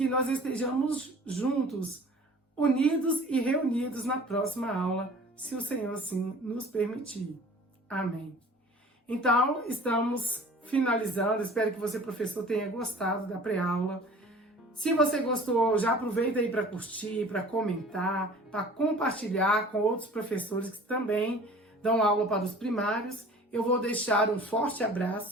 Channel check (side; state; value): both; normal; correlation 0.46